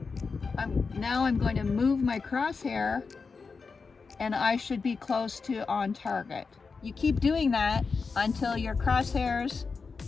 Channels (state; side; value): quieter; right; 4.8 dB